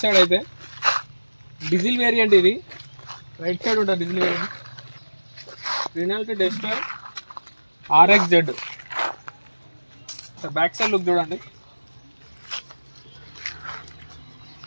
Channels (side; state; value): both; inverted; correlation -1.00